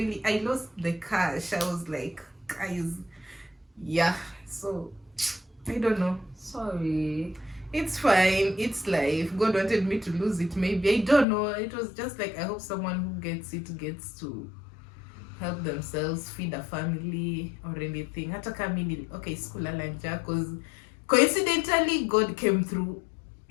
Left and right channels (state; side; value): drops out; right; at 11.2 s